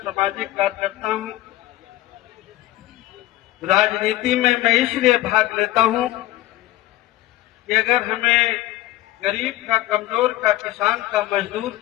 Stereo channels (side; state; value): right; quieter; 15.8 dB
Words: कार्यकर्ता हूं। राजनीति में मैं इसलिए भाग लेता हूं कि अगर हमें गरीब का, कमजोर का, किसान का, मजदूर